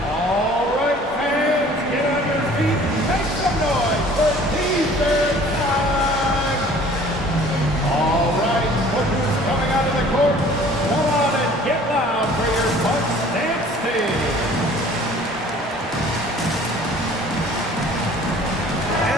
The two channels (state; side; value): normal; both; correlation 0.50